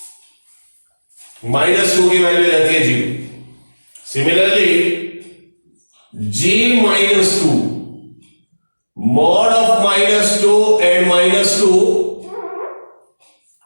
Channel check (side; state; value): both; inverted; correlation -1.00